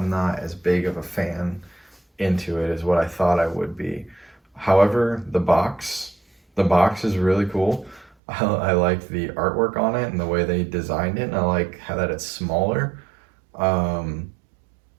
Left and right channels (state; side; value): drops out; left; at 8.2 s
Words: not as big of a fan into it as what I thought I would be. However, the box is really cool. I like the artwork on it and the way they designed it, and I like how that it's smaller. Um,